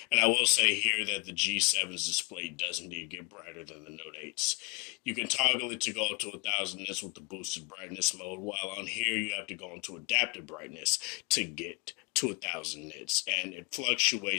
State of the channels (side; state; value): right; quieter; 30.4 dB